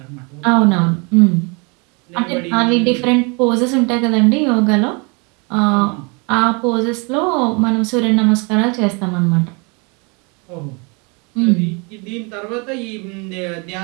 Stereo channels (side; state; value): left; quieter; 31.4 dB